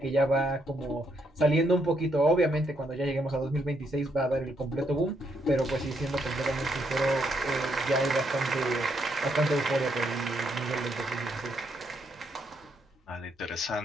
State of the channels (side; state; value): both; normal; correlation 0.75